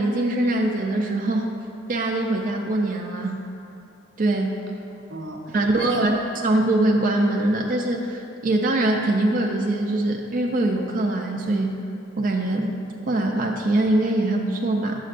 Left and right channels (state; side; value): normal; both; correlation 0.68